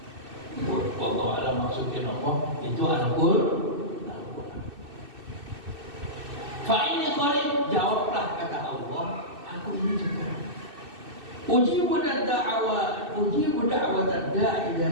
Wallahu a'lam maksudnya apa? Itu Al-Qur'an. Fa inni qarib, jawablah kata Allah, aku ini dekat. Ujibu da'wat da'i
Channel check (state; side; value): late; left; 2.6 ms